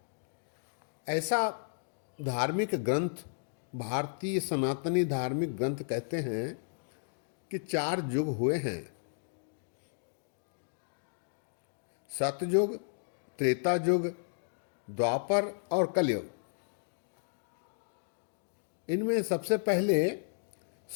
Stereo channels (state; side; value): silent; right; digital silence